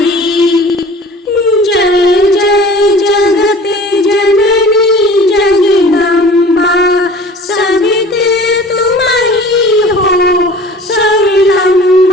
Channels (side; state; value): both; normal; correlation 0.44